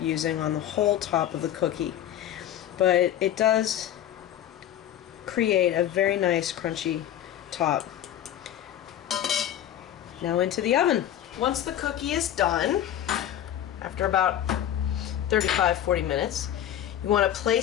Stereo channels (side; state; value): right; quieter; 11.3 dB